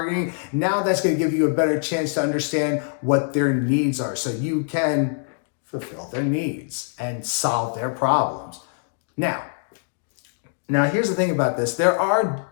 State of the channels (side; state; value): right; silent; digital silence